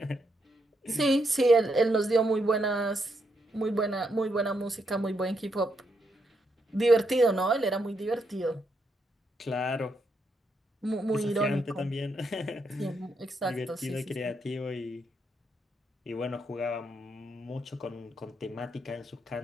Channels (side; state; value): both; normal; correlation 0.79